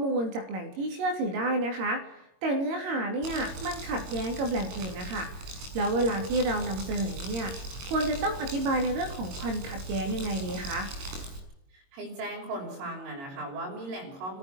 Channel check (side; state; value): left; late; 22 ms